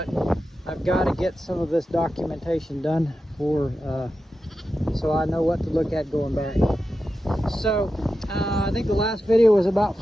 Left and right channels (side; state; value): both; normal; correlation 0.91